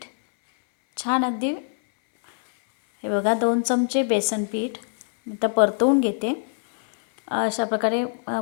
छान अगदी, हे बघा, 2 चमचे बेसन पीठ आता परतवून घेते. अशा प्रकारे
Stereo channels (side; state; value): right; silent; 63 dB below the other